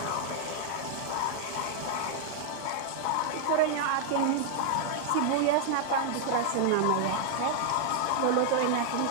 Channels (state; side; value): different; both; correlation 0.00